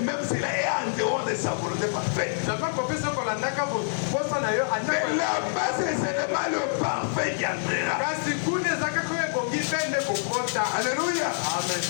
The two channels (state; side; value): silent; right; digital silence